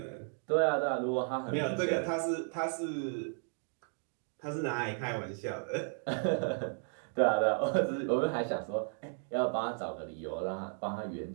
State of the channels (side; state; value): left; silent; 55 dB below the other